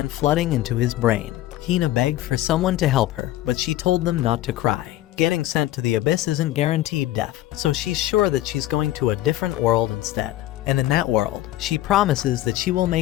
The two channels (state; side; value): quieter; right; 15.0 dB